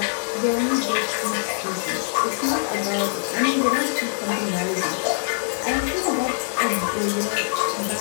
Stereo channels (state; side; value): silent; right; digital silence